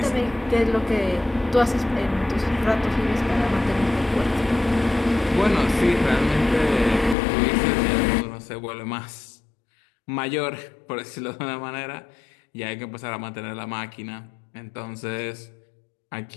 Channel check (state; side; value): drops out; right; at 7.2 s